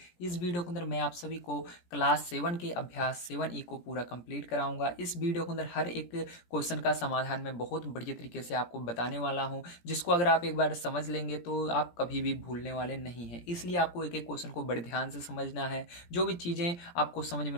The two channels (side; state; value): right; late; 17 ms